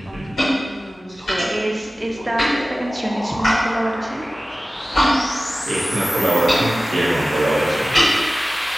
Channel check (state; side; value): normal; both; correlation 0.96